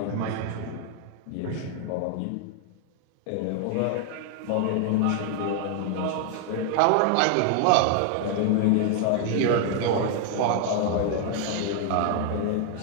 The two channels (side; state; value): both; different; correlation 0.00